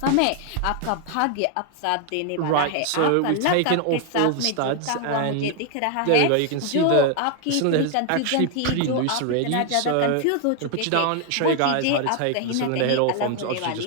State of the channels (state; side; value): different; both; correlation 0.00